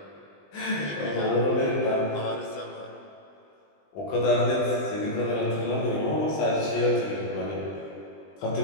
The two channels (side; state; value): right; late; 20 ms